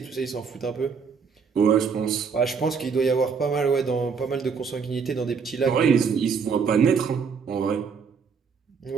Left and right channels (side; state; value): left; quieter; 5.8 dB